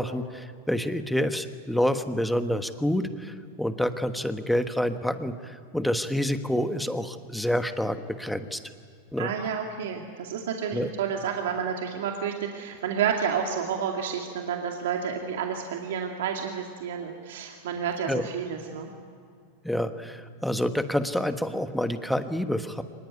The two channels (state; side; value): normal; both; correlation 0.53